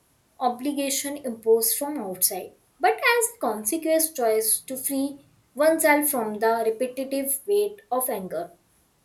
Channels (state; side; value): identical; both; correlation 1.00